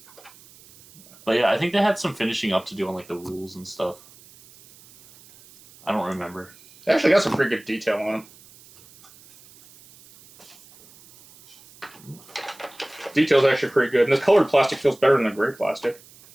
But yeah, I think they had some finishing up to do on like the rules and stuff. I don't remember. They actually got some pretty good detail on them. Detail's actually pretty good, and this colored plastic feels better than the gray plastic.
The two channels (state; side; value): noise; right; hiss, 24 dB below the sound